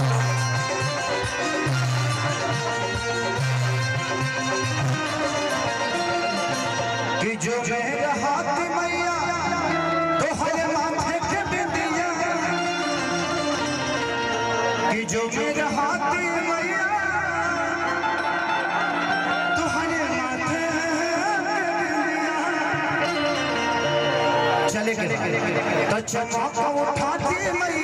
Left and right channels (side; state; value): both; identical; correlation 1.00